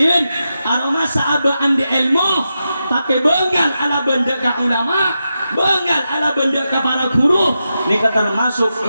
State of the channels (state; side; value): inverted; both; correlation -0.89